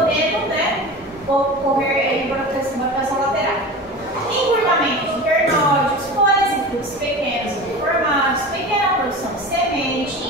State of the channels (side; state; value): both; normal; correlation 0.32